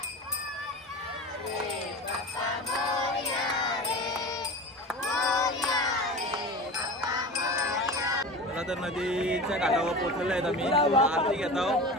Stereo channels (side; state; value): both; normal; correlation 0.32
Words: तर नदीच्या काठावर पोहोचलेलो आहेत आम्ही. आरती घेत आहोत.